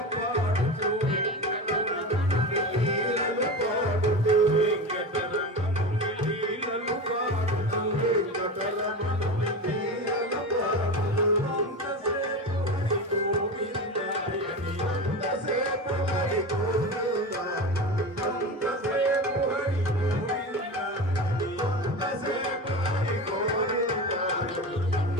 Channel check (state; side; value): normal; both; correlation 0.26